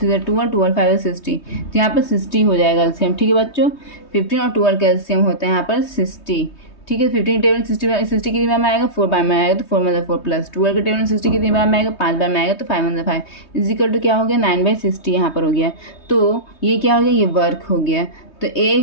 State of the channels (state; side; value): late; right; 3.2 ms